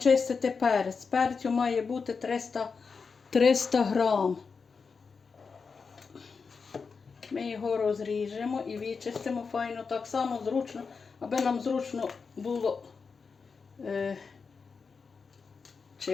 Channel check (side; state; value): right; quieter; 5.2 dB